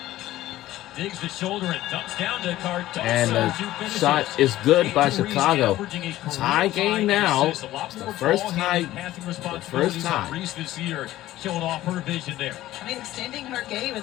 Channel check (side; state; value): right; quieter; 15.1 dB